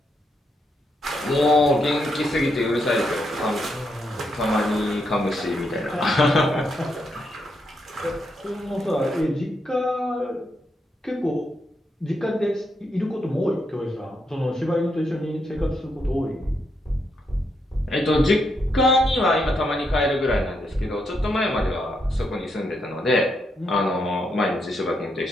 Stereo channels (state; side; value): normal; both; correlation 0.80